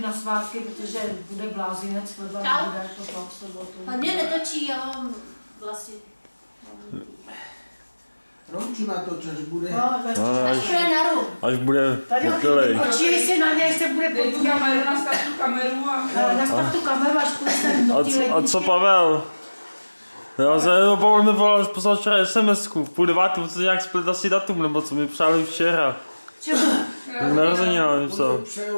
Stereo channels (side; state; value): both; inverted; correlation -1.00